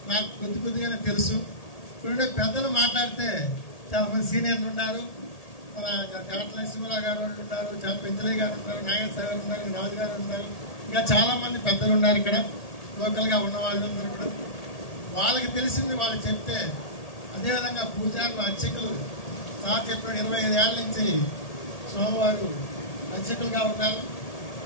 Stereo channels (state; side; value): late; right; 1.8 ms